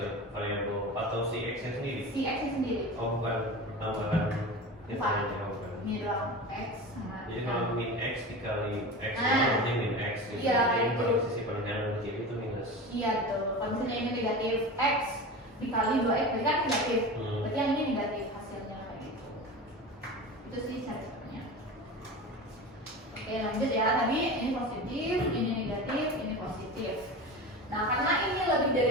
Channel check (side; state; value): both; normal; correlation 0.30